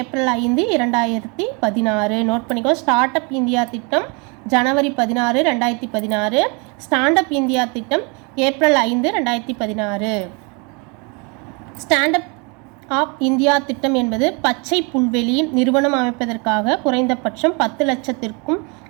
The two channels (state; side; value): quieter; left; 31.8 dB